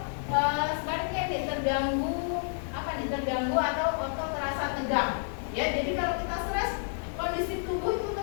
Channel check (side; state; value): right; silent; digital silence